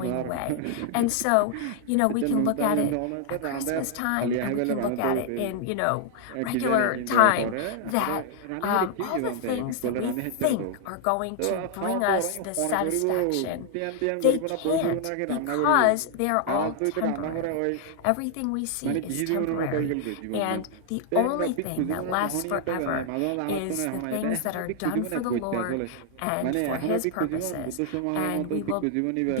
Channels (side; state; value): both; different; correlation 0.00